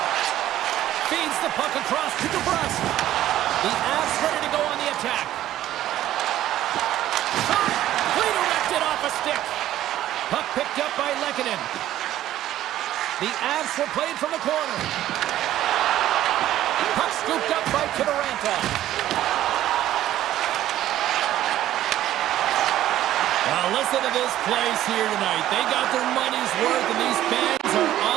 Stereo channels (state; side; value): quieter; left; 13.2 dB